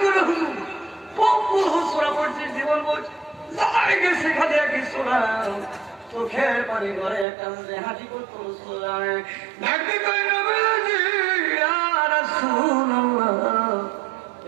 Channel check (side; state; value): left; drops out; at 7.2 s